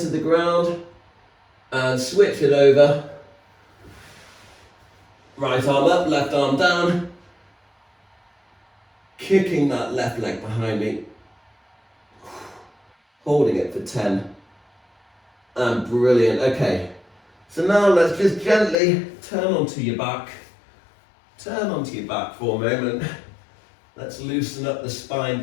the ground, and switch it over. Right arm up, left arm down. Kicking that left leg behind me. Holding it for 10. And brilliant. Okay. So now let's just gently turn onto your back. Turn onto your back for a moment. Let's loosen up the spine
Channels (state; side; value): drops out; right; at 18.8 s